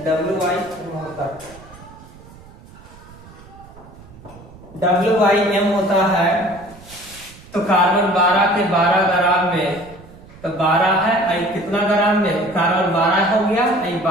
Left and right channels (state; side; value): noise; right; rumble, 21 dB below the sound